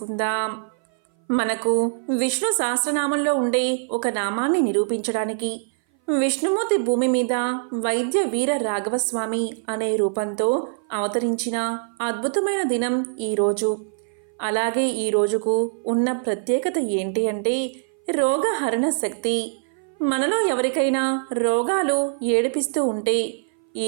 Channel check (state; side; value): silent; left; 59 dB below the other